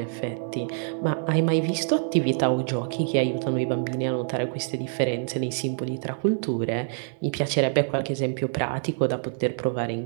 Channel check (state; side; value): silent; left; digital silence